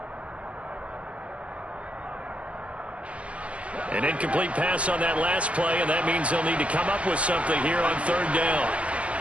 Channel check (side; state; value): left; late; 0.062 ms